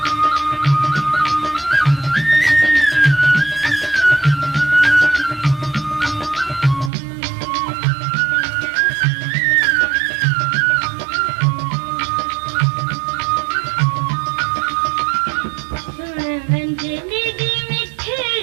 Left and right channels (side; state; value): left; drops out; at 6.9 s